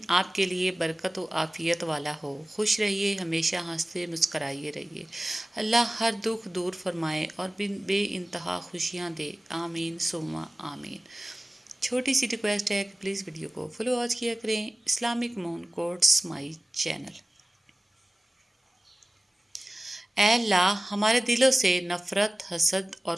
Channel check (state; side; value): normal; both; correlation 0.97